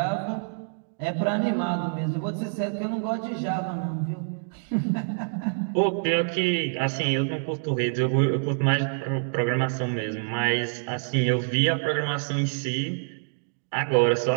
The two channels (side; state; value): left; silent; digital silence